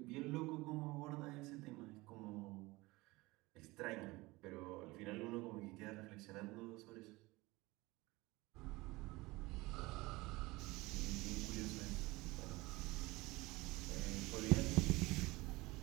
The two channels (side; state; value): left; quieter; 21.7 dB